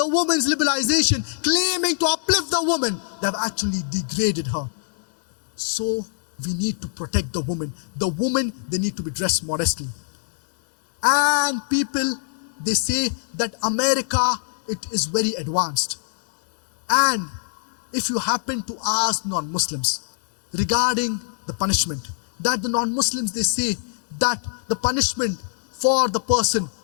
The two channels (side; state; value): right; silent; digital silence